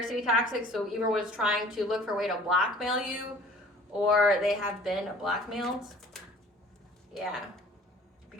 tactics, so either was trying to look for a way to blackmail you, or they have been blackmailed. Yeah,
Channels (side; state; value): both; normal; correlation 0.49